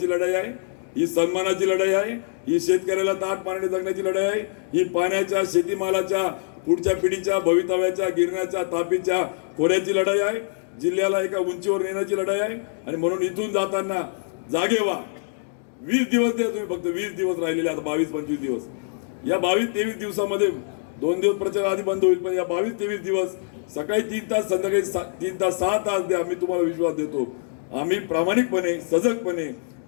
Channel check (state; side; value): silent; right; digital silence